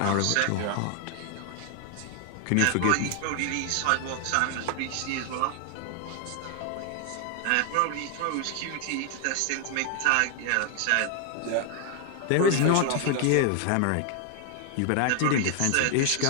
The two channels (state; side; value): different; both; correlation 0.00